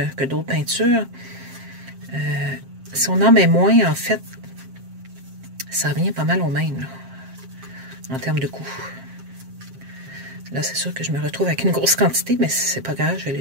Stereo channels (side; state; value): left; late; 7.5 ms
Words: d'autres peintures, si on en met moins, en fait, ça revient pas mal au même, là, en termes de coût. Là, c'est sûr que je me retrouve avec une grosse quantité, mais c'est pas grave, je vais